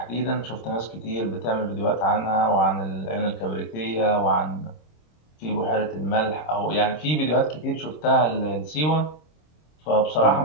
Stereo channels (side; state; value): right; late; 26 ms